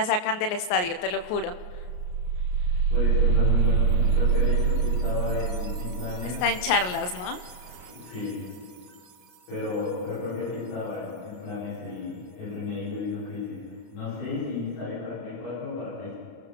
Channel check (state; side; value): late; right; 33 ms